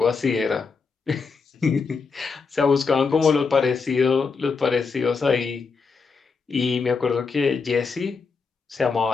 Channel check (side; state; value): right; quieter; 4.9 dB